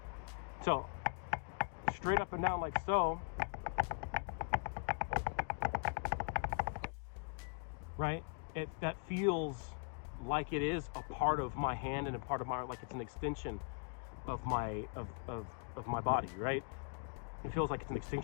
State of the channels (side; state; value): right; quieter; 39.1 dB